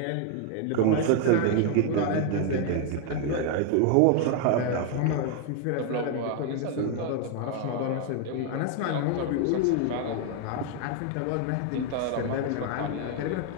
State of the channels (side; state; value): both; different; correlation 0.01